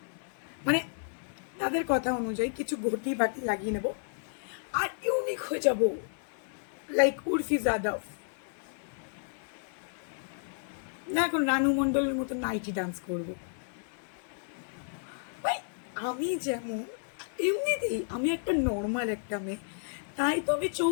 মানে তাদের কথা অনুযায়ী কিছু ঘটি বাটি লাগিয়ে নেব, আর ইউনিক হয়ে যাব, লাইক উর্ফি যাদব। না, এখন রানু মণ্ডলের মতো নাইটি ডান্স করবো। ভাই, আমি যেমন এমনিতেই আমি একটা নর্মাল একটা মেয়ে, তাই তো আমি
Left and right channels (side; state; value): right; silent; 57 dB below the other